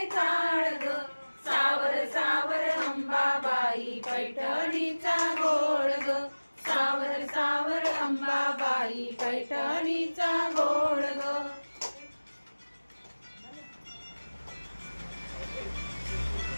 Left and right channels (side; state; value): both; inverted; correlation -1.00